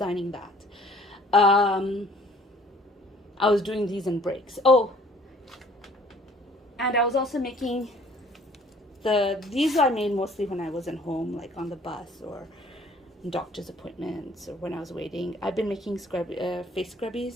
that. I was doing these in breaks. Oh, and I was also making these I made mostly when I wasn't home, like on the bus or doctor's appointments or when I was waiting. I've been making face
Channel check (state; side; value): normal; both; correlation 0.55